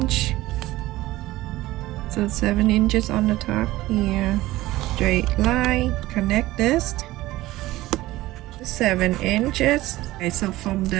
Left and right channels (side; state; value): left; quieter; 17.3 dB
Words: So 7 inches on the top here. Straight line. Connect this. 7 inches. Okay, so from